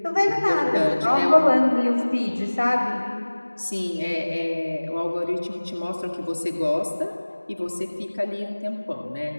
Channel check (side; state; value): both; inverted; correlation -1.00